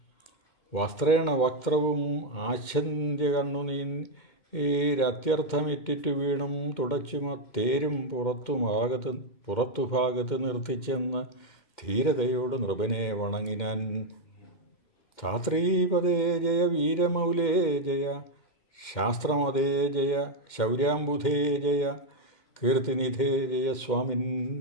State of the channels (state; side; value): late; right; 2.1 ms